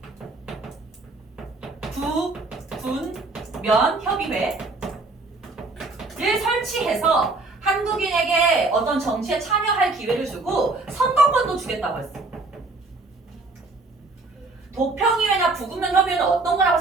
부군면협의회를 설치해서 한국인에게 어떤 정치에 참여할 기회를 주고 선거권도 주겠다고 했어. 도평의회나 부군면협의회는 어떤 거라고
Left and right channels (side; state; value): left; quieter; 3.4 dB